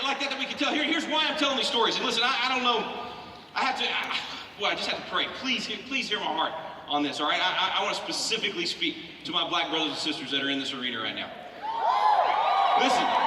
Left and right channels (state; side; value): identical; both; correlation 1.00